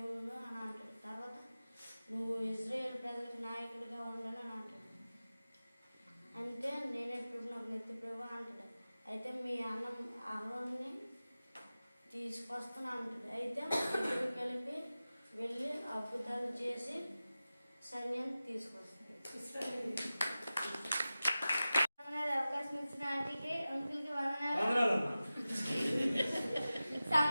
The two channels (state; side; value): inverted; both; correlation -0.95